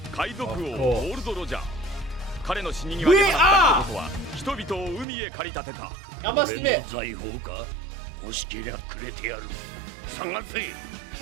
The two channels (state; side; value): drops out; left; at 5.1 s